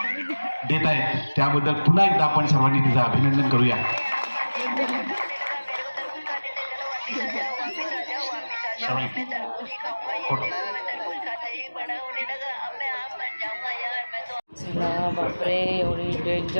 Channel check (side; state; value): both; inverted; correlation -1.00